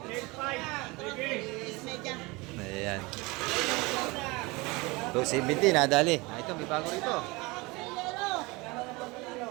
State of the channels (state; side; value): quieter; left; 24.3 dB